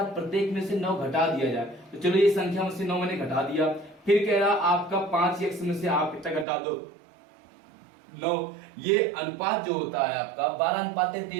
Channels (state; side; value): drops out; left; at 6.5 s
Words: प्रत्येक में से 9 घटा दिया जाए। तो चलो ये संख्या में से 9 मैंने घटा दिया। फिर कह रहा आपका 5x में से आप कितना घटा दो 9। ये अनुपात जो होता है आपका